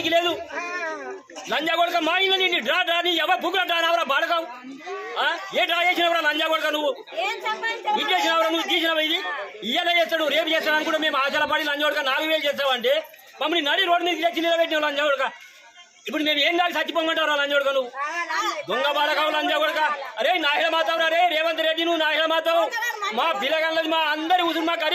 లేదు లంజాగొడక మా ఇల్లు నిన్ను డ్రా డ్రా నీ ఎవరు బుక్కులు డ్రా నావరా బాడకావు ఏ డ్రా చేసినవరా లంజాగొడక నువ్వు ఇది చేసినవరా నువ్వు తీసినవా ఇది ఇయ్యాల చేస్తాడు రేపు చేస్తాడు అని కూడా మేము ఆశల పడి లంజాగొడక 4000 చేస్తావంటే మమ్మల్ని నడి రోడ్డు మీద తెచ్చి నిలబెట్టినావు లంజాగొడక ఇప్పుడు మేము ఏం దాకా చచ్చిపోమంటారా లంజాగొడక నువ్వు దొంగ బాడకావు లంజాగొడక అరే నాహిల మాతావు రే రేవంత్ రెడ్డి నువ్వు నాహిల మాతావు మా పిల్లగాళ్ళది మా అందరి ఉసురు మా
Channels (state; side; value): identical; both; correlation 1.00